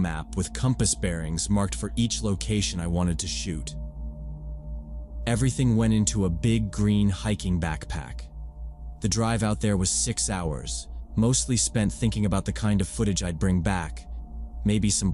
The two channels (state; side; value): identical; both; correlation 1.00